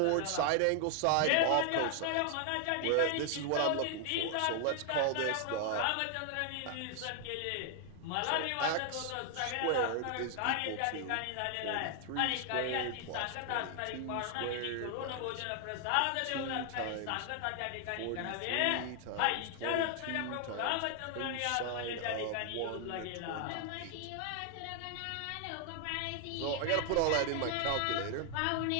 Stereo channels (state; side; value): different; both; correlation 0.00